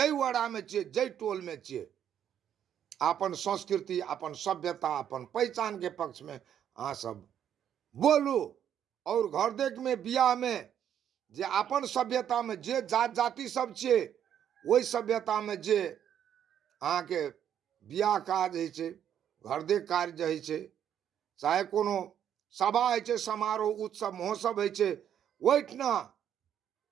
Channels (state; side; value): quieter; left; 9.6 dB